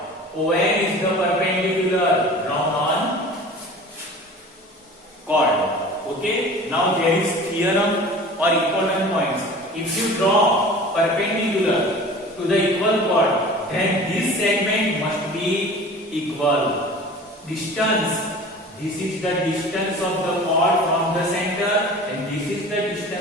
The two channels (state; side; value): normal; both; correlation 0.40